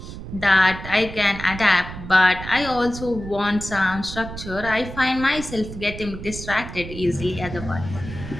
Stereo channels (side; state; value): right; noise; rumble, 11 dB below the sound